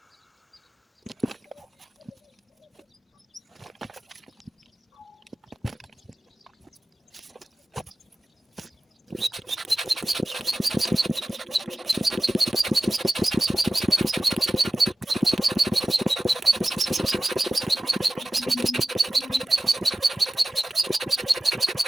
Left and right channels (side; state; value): both; normal; correlation 0.94